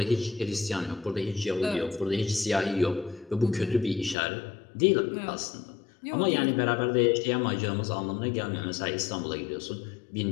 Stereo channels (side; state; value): right; drops out; at 4.2 s